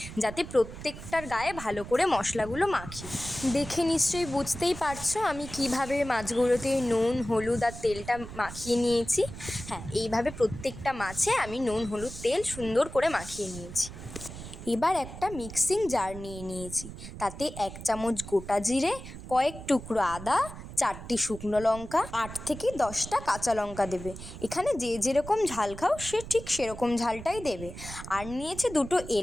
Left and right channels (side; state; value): right; noise; rumble, 12 dB below the sound